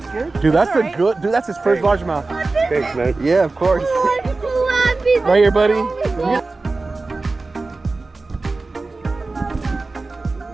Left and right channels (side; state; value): left; quieter; 3.5 dB